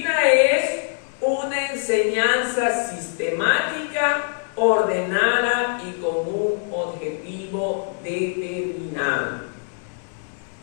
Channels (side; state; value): right; silent; digital silence